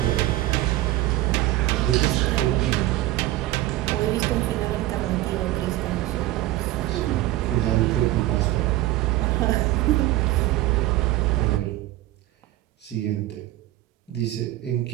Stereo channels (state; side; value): quieter; left; 16.2 dB